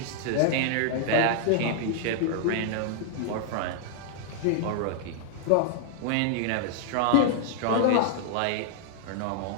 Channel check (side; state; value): both; different; correlation -0.01